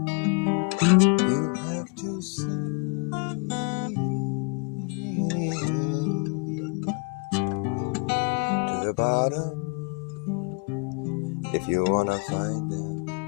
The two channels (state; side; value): quieter; right; 33.3 dB